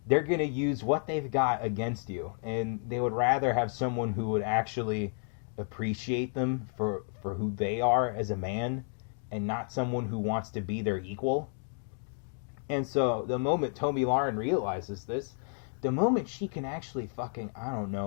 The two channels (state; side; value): silent; right; 57 dB below the other